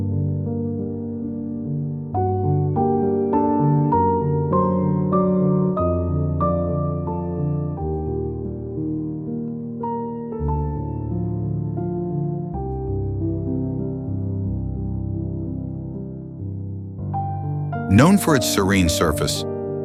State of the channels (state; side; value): identical; both; correlation 1.00